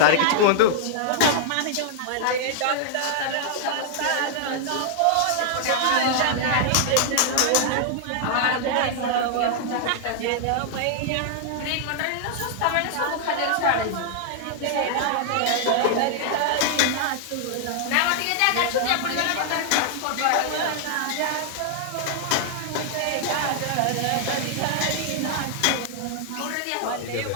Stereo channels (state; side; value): different; both; correlation -0.01